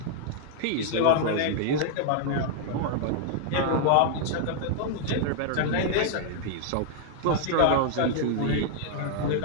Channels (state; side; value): different; both; correlation 0.00